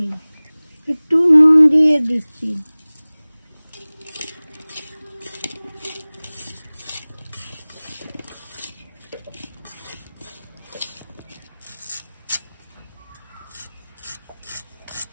একটু নুন দিয়ে দিচ্ছি।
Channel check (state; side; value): inverted; both; correlation -0.99